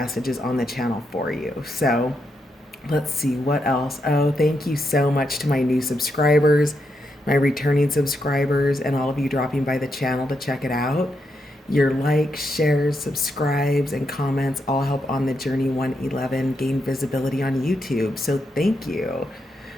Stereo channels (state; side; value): normal; both; correlation 0.82